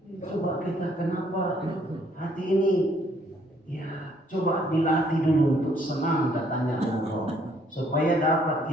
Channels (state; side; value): normal; both; correlation 0.65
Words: Coba kita kenapa hati ini coba dilatih dulu untuk senang datangnya Ramadan, supaya dapat